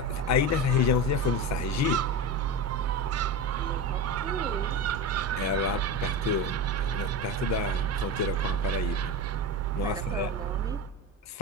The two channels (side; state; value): both; normal; correlation 0.23